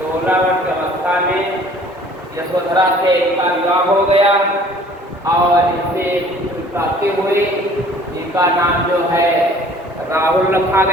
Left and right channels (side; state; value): both; normal; correlation 0.52